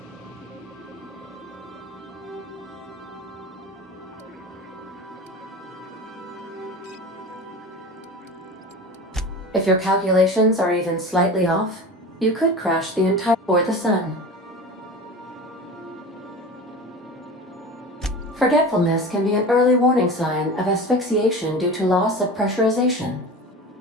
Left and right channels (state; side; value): normal; both; correlation 0.33